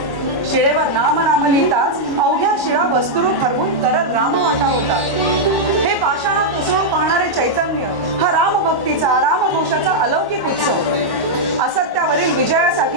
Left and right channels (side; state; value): right; late; 1.1 ms